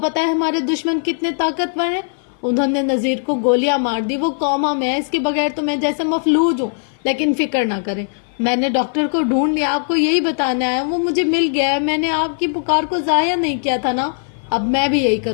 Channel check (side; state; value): right; silent; 55 dB below the other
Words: ہے ہمارے دشمن کتنے طاقتور ہیں. انہوں نے نذیر کو گولیاں مار دی. وہ کوما میں ہے. اس کے بغیر تو میں جیسے مفلوج ہوں. لیکن فکر نہ کریں, میں نے ڈاکٹر کو ڈھونڈ لیا. آپ کو یہی بتانا ہے, وہ مجھے مل گیا ہے. میں نے آپ کی پکار کو ضائع نہیں کیا تھا نا. اب میں بھی یہی